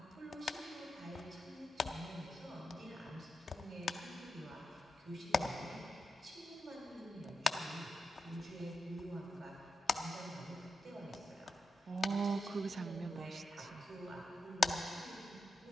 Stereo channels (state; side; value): normal; both; correlation 0.87